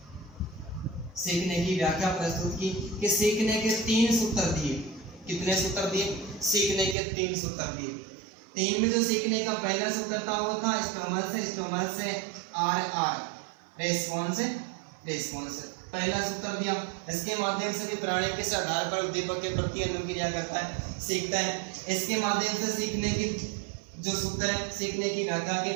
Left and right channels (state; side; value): drops out; left; at 7.0 s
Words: सीखने की व्याख्या प्रस्तुत की कि सीखने के 3 सूत्र दिए। कितने सूत्र दिए? सीखने के 3 सूत्र दिए। 3 में जो सीखने का पहला सूत्र था वो था स्टोमस से आर आर रेस्पॉन्स, रेस्पॉन्स पहला सूत्र दिया। इसके माध्यम से भी प्राणी किस आधार पर उद्दीपक के प्रति अनुक्रिया करता है, सीखता है। इसके माध्यम से सीखने की जो सूत्र है, सीखने की व्याख्या के